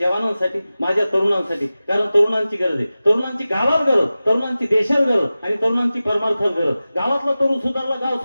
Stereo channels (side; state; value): both; inverted; correlation -0.96